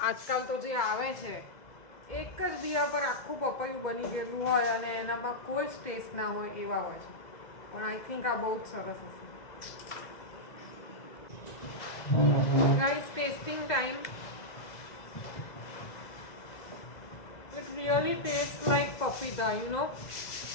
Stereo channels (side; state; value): right; late; 2.0 ms